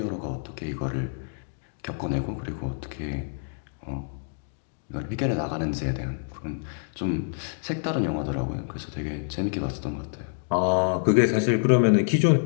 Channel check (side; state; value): right; silent; digital silence